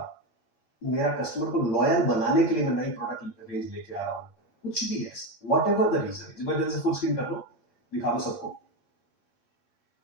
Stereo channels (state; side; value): late; right; 7.9 ms